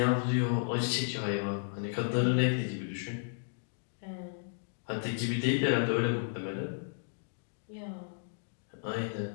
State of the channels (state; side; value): silent; right; digital silence